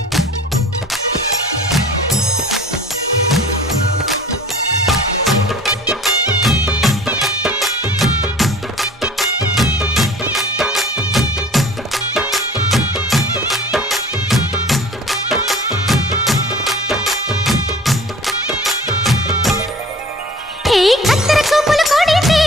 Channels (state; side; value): normal; both; correlation 0.46